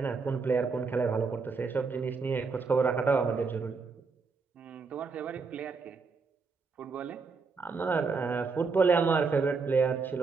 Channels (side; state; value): left; quieter; 4.7 dB